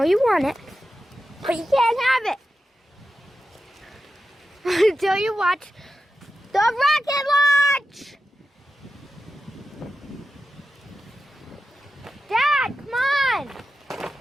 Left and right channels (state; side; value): normal; both; correlation 0.91